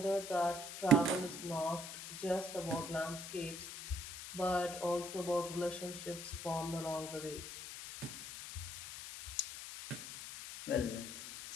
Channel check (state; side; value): noise; left; hiss, 9 dB below the sound